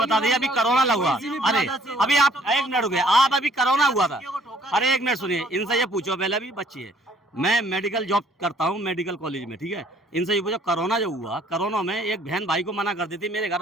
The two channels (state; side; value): normal; both; correlation 0.60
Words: दीजिए, अभी कोरोना लगा, अरे अभी आप एक मिनट हो गया, आप अभी कोरोना हुआ था, अरे एक मिनट सुनिए, इनसे ये पूछो, पहले अभी बच्ची है, मैं मेडिकल जॉब करता हूँ मेडिकल कॉलेज में, ठीक है। इनसे ये पूछो, कोरोना जो हुआ, कोरोना में एक बहन भाई को मना कर दी थी, मेरे